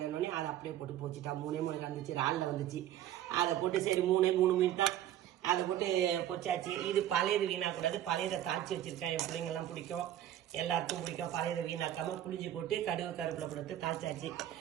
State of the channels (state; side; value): quieter; left; 12.0 dB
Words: அதை அப்படியே போட்டு போச்சுட்டா. 3 வந்துச்சு, இறாலில் வந்துச்சு. அதை போட்டு சரி 3 மீன் தான் அதை போட்டு பொச்சாச்சு. இது பழையது வீணாக்கூடாது, பழையதை தாளிச்சு வச்சிருக்கேன். என் பிள்ளைங்கெல்லாம் பிடிக்கும், எல்லாருக்கும் பிடிக்கும். பழையதை வீணாக்காம புளிஞ்சு போட்டு கருவேப்பிலை போட்டு தாளிச்சாச்சு.